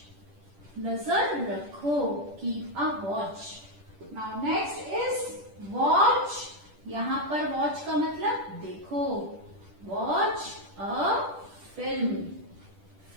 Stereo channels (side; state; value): left; late; 10 ms